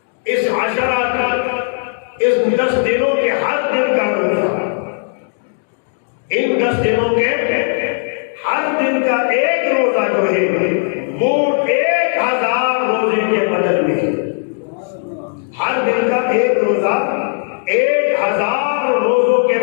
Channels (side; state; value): right; silent; digital silence